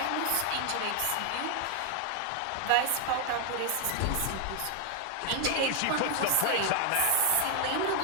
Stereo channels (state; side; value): different; both; correlation 0.00